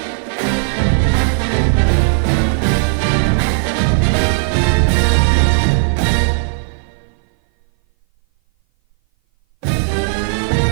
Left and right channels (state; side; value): silent; left; 58 dB below the other